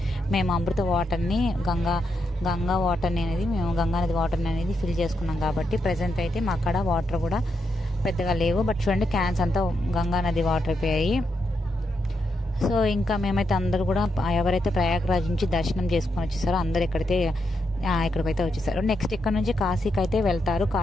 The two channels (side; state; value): both; normal; correlation 0.83